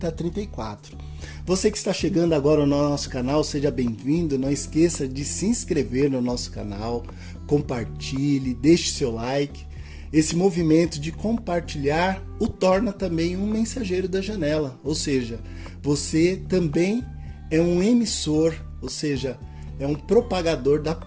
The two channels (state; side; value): identical; both; correlation 1.00